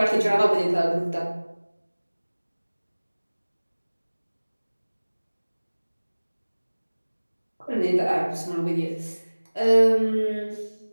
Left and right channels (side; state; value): both; inverted; correlation -1.00